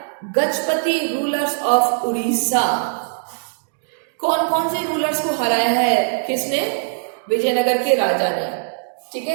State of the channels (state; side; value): silent; left; digital silence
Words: Gajapati rulers of Orissa. कौन कौन से रूलर्स को हराया है किसने? विजयनगर के राजा ने। ठीक